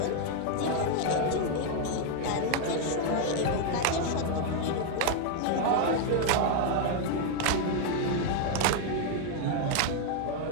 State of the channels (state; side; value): different; both; correlation 0.00